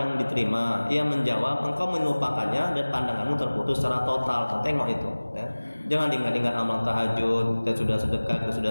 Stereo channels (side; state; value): both; inverted; correlation -1.00